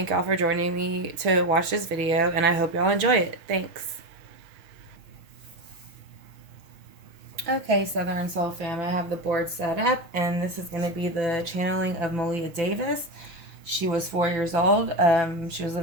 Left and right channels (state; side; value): late; left; 5.9 ms